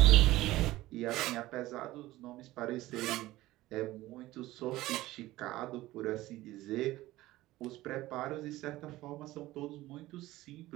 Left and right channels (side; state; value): left; quieter; 17.2 dB